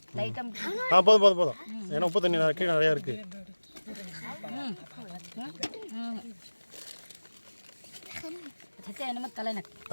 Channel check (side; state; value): both; inverted; correlation -1.00